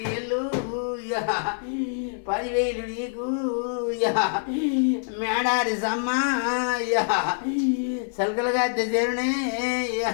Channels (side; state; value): right; silent; 58 dB below the other